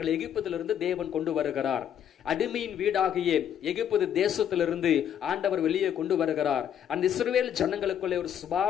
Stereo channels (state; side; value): quieter; right; 9.5 dB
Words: எகிப்திலிருந்து தேவன் கொண்டு வருகிறார். அடிமையின் வீடாகிய எகிப்து தேசத்திலிருந்து ஆண்டவர் வெளியே கொண்டு வருகிறார். அந்த இஸ்ரவேல் ஜனங்களுக்குள்ளே ஒரு